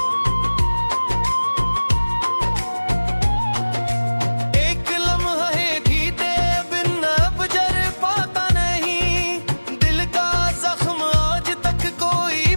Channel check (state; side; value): inverted; both; correlation -1.00